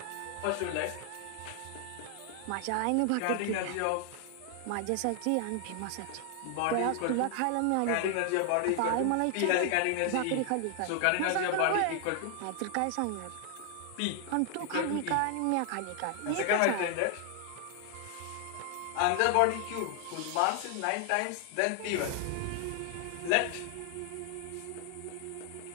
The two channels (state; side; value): different; both; correlation 0.00